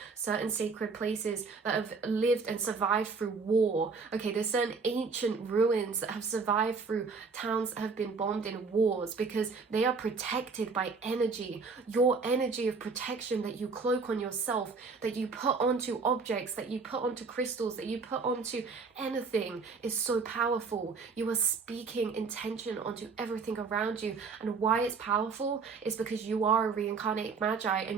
certain sacred places that have lived and survived through war. Okay, there's certain ancient ruins that have survived through towns that have been bombed in wars, because they are protected by energy. Your energy of protection that you cloak on yourself, that you put onto objects, that you put onto crystals, that you put onto anything, is so powerful. You are speaking intention onto everything around you. And why it's powerful is because you are a reincarnated magi,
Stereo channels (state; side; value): quieter; left; 4.7 dB